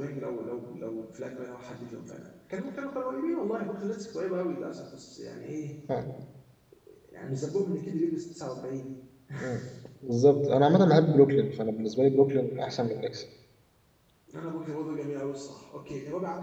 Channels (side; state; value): both; identical; correlation 1.00